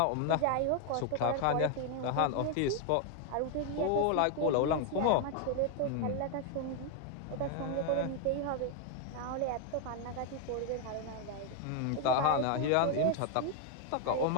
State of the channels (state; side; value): different; both; correlation 0.01